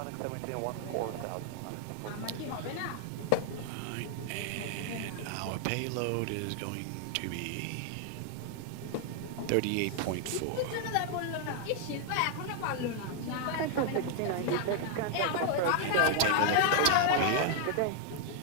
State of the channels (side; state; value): both; different; correlation 0.00